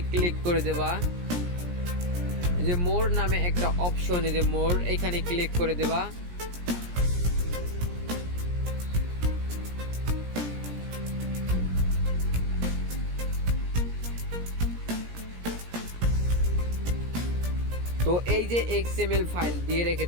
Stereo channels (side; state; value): left; late; 17 ms